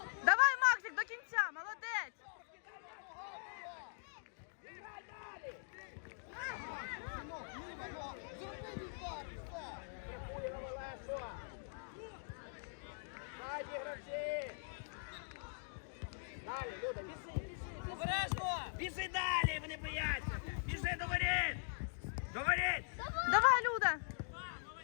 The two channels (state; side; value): silent; right; digital silence